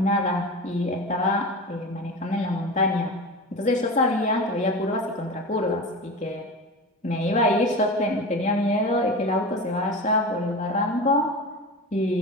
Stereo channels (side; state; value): both; normal; correlation 0.29